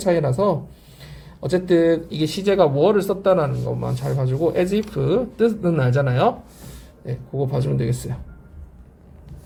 어쨌든 이게 시제가 were를 썼다라는 것만 잘 봐주고 as if 뜻은 알잖아요. 네, 그거 봐주면 되겠어요.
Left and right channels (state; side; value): identical; both; correlation 1.00